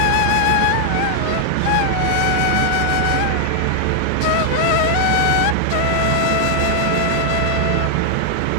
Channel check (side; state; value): both; different; correlation 0.00